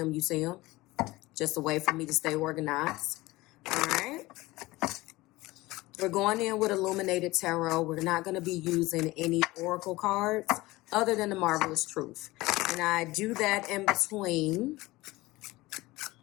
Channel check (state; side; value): quieter; right; 19.8 dB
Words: you see them. Just a way for me to stay organized. All right. We're going in with Illuminated Tarot. We're not going to be using any oracle cards other than the Marvelous Truth. And I do that in between